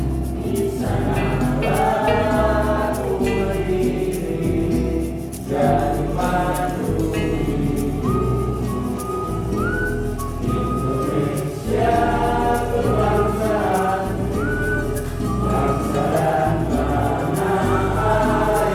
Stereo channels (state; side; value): identical; both; correlation 1.00